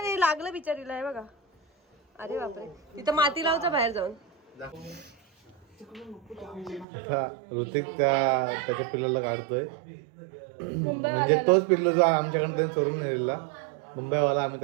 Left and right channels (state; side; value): drops out; left; at 6.9 s